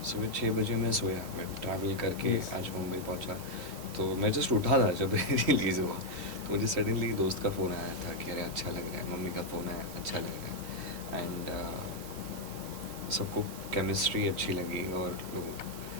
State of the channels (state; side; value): normal; both; correlation 0.00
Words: सुबह 6 बजे मैं सोया, मैं ट्रैवल करके Yes. आज मुंबई पहुंचा। तो मैं जस्ट उठा था जब रिलीज़ हुआ, तो मुझे सडनली दोस्त का फ़ोन आया था कि अरे अच्छा लग रहा है, मम्मी का फ़ोन आया अच्छा लग रहा है। एंड सबको केमिस्ट्री अच्छी लगी, और लोगों